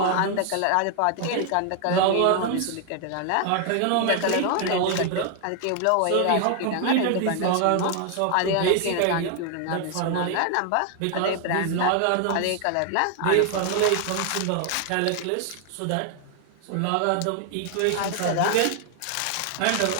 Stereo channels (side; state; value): both; different; correlation 0.00